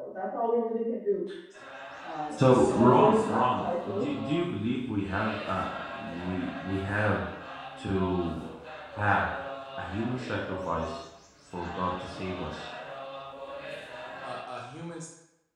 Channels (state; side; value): identical; both; correlation 1.00